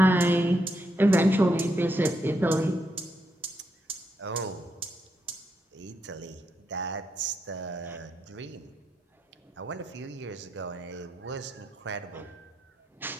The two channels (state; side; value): normal; both; correlation 0.80